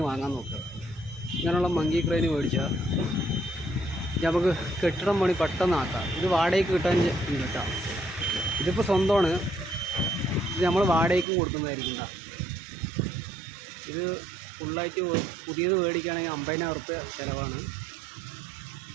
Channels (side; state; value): left; drops out; at 11.2 s